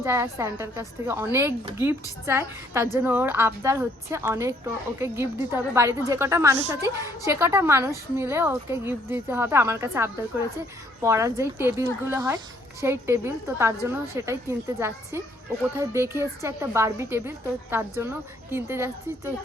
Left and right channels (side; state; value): both; normal; correlation 0.66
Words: চায় আর স্যান্টার কাছ থেকে অনেক গিফট চায়। তার জন্য ওর আবদার হচ্ছে অনেক, ওকে গিফট দিতে হবে। বাড়িতে যে কটা মানুষ আছে সে কটা মানুষ মিলে ওকে গিফট দিতে হবে। আমার কাছে আবদার করেছে পড়ার যেই টেবিলগুলো হয় সেই টেবিল, তো তার জন্য সেটাই কিনতে যাচ্ছি। ও কোথায় দেখে এসছে একটা বারবি টেবিল, তো তার জন্য কিনতে যাচ্ছি। তো